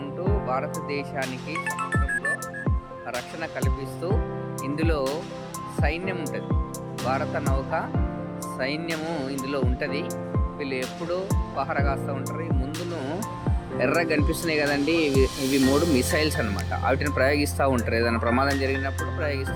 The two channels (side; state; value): both; identical; correlation 1.00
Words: ఉంటూ భారతదేశానికి సముద్రంలో రక్షణ కల్పిస్తూ, ఇందులో సైన్యం ఉంటుంది, భారత నౌక సైన్యము ఇందులో ఉంటుంది. వీళ్ళు ఎప్పుడూ పహర కాస్తూ ఉంటారు. ముందును ఎర్రగా కనిపిస్తున్నాయి కదండి, ఇవి 3 మిసైల్స్ అనమాట. వాటిని ప్రయోగిస్తూ ఉంటారు. ఏదైనా ప్రమాదం జరిగినప్పుడు